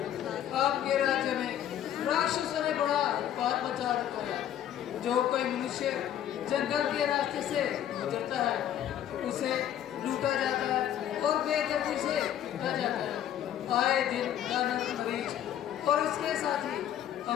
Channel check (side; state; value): right; quieter; 10.8 dB